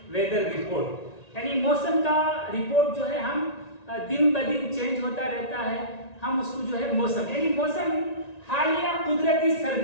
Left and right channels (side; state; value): right; late; 1.9 ms